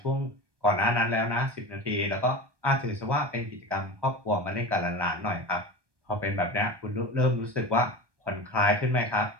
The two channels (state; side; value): late; left; 1.2 ms